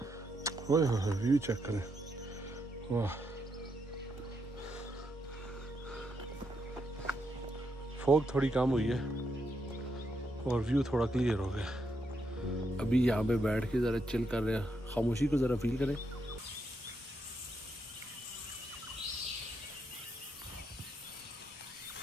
व्यू चेक करें, वाह। फॉग थोड़ी कम हुई है और व्यू थोड़ा क्लियर हो गया। अभी यहाँ पे बैठ के ज़रा चिल कर रहे हैं, खामोशी को ज़रा फील करें।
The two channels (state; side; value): normal; both; correlation 0.80